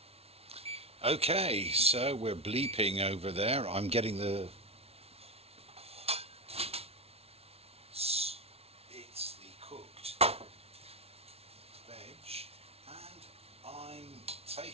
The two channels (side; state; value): left; late; 0.30 ms